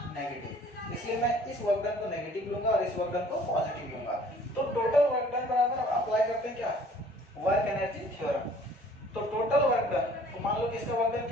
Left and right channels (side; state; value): both; normal; correlation 0.54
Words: नेगेटिव। इसलिए मैं इस वर्क डन को नेगेटिव लूंगा और इस वर्क डन को पॉजिटिव लूंगा। तो टोटल वर्क डन बराबर अप्लाई करते हैं क्या, वर्क एनर्जी थ्योरम। तो टोटल वर्क डन, तो मान लो कि इसका वर्क डन